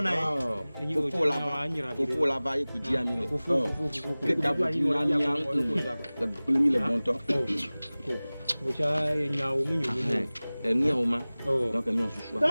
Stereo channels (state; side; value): inverted; both; correlation -0.99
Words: e. Faut là-bas, écoute dia mi. Que d'abord tu na mi le mi le bon temps. Mo cha nya o mu nyu. Ni o ma. Donc mi on se choix.